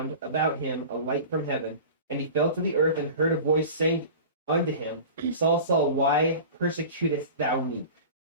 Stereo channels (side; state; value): both; inverted; correlation -0.36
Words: about him a light from heaven, and he fell to the earth and heard a voice saying unto him, Saul, Saul, why persecutest thou me?